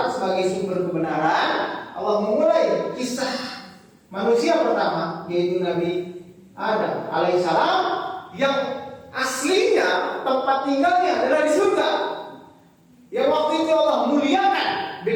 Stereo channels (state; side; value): identical; both; correlation 1.00